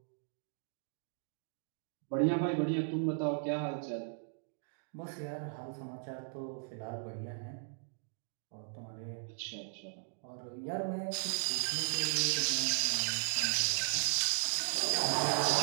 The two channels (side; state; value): left; silent; digital silence